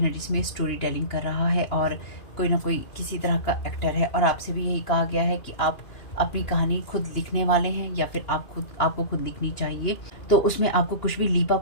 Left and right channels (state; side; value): late; right; 2.4 ms